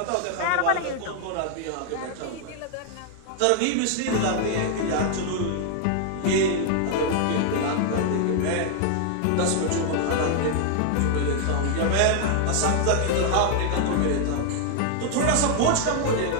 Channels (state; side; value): different; both; correlation 0.00